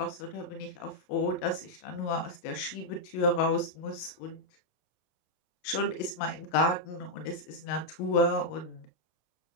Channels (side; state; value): right; late; 28 ms